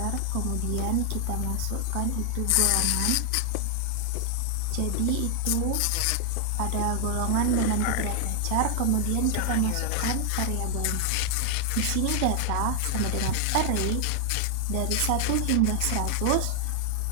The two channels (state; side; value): different; both; correlation 0.00